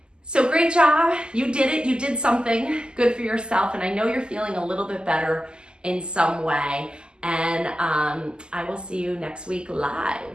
So great job. You did it. You did something good for yourself. And I know you're feeling a little bit better in some way. And I will see you next week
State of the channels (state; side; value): late; left; 0.048 ms